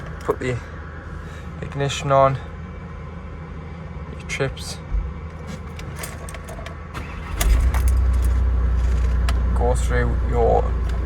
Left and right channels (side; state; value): both; identical; correlation 1.00